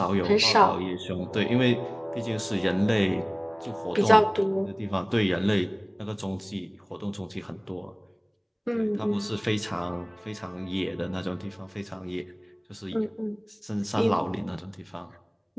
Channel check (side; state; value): both; identical; correlation 1.00